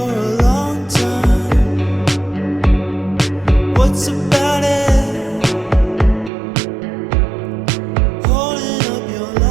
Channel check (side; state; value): left; drops out; at 6.3 s